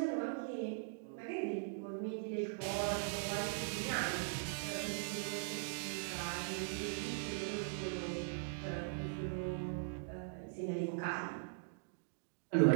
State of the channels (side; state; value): left; silent; digital silence